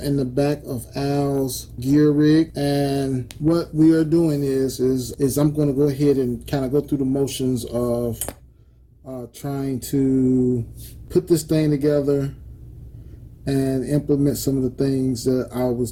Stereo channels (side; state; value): both; identical; correlation 1.00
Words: the back of Al's gear rig. And what we are doing is I'm going to go ahead and kind of go through the motions of trying to put this thing together and implement some of the things that I was